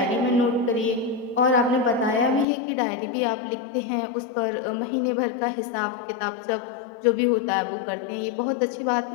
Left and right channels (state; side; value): drops out; right; at 2.5 s